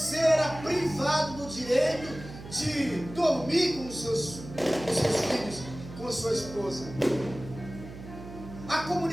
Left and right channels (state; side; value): noise; right; hum, 14 dB below the sound